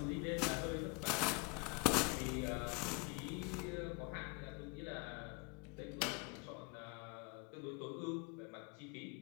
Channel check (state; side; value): quieter; right; 31.4 dB